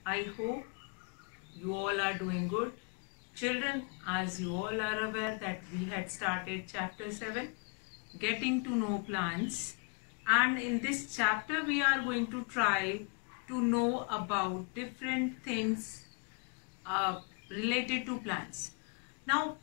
I hope you all are doing good. Children, as you all are aware that we had started chapter 7, Getting to Know Plants. And in this chapter, we are going to try to know about different things related to plants. Now,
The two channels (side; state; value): right; quieter; 33.8 dB